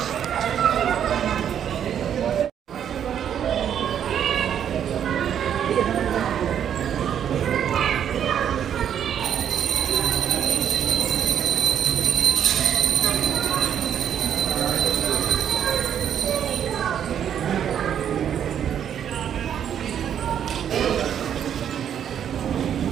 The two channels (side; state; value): left; quieter; 9.2 dB